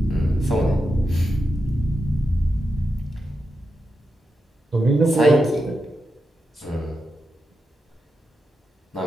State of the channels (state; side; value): normal; both; correlation 0.88